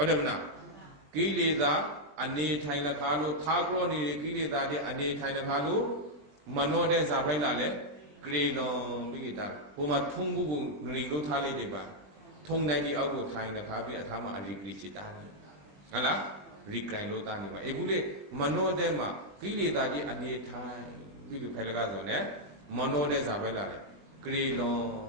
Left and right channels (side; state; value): left; late; 20 ms